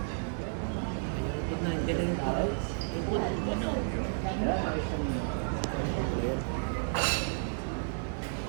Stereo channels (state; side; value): silent; left; digital silence